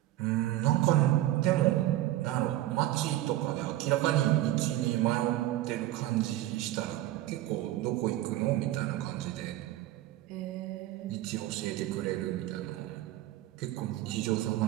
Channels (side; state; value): left; quieter; 15.1 dB